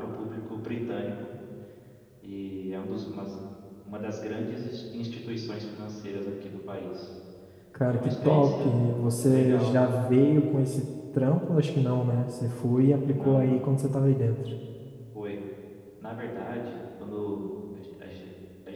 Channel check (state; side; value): identical; both; correlation 1.00